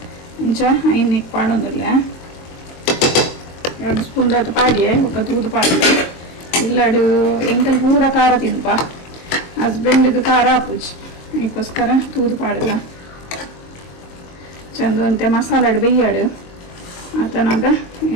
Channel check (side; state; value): right; late; 23 ms